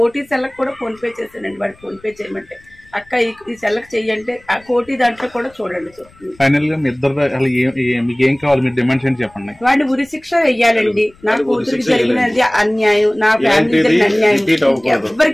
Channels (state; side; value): noise; left; rumble, 28 dB below the sound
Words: సెల్లకు కూడా ఫోన్ పే చేస్తానండి. వాడికి ఫోన్ పే చేయమంటే అక్క ఈ సెల్లకు చెయ్యంటే ఆ కోటి దాంట్లో కూడా చూడండి. ఫైనల్ గా మీ ఇద్దరు మీకు ఏం కావాలి, మీరు డిమాండ్స్ ఏంటి చెప్పండి. వాడిని ఉరి శిక్ష వెయ్యాలండి. నా కూతురికి జరిగినది అన్యాయం, నా ఫ్యామిలీ అన్యాయం